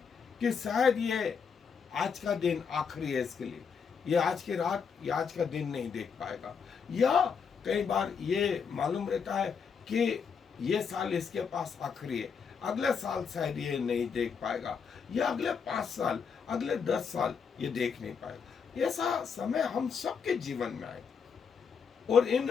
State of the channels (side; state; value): right; quieter; 6.3 dB